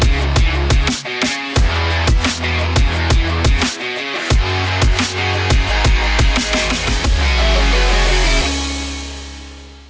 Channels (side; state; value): both; identical; correlation 1.00